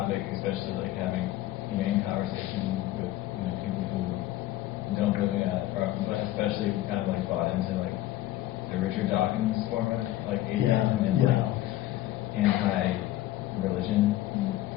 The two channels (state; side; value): quieter; right; 15.0 dB